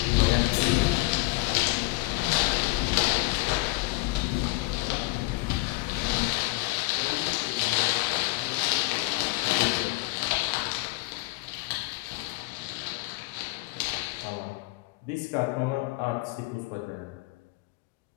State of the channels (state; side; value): quieter; right; 22.9 dB